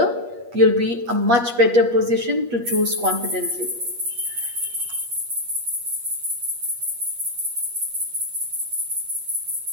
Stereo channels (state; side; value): late; left; 8.4 ms